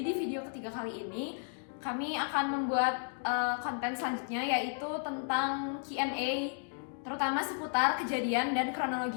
video ketiga kali ini kami akan membuat konten selanjutnya, yaitu tentang Q&A, terutama seputar kejadian dan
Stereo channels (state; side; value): silent; right; 55 dB below the other